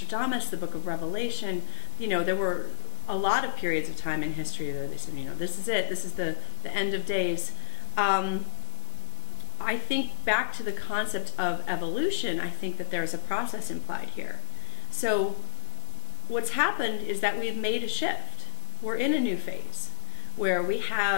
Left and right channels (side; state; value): right; silent; digital silence